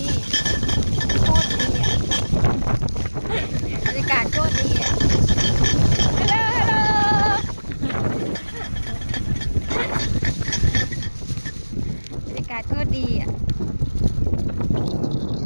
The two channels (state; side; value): inverted; both; correlation -1.00